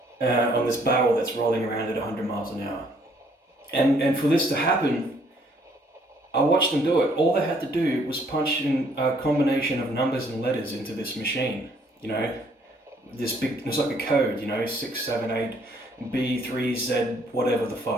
on this barrel that's rolling around at 100 miles an hour. And for this to happen, I watched them do it. All they had to do was punch in a combination of numbers and letters into this machine. You know, this big, it's like a code, you know, 6, 7, 8, B, 3, Z, whatever the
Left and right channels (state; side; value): normal; both; correlation 0.64